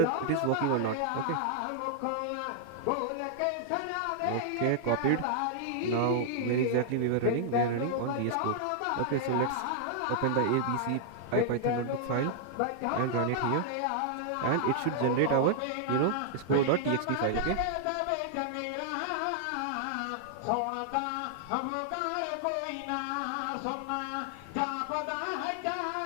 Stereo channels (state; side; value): different; both; correlation -0.01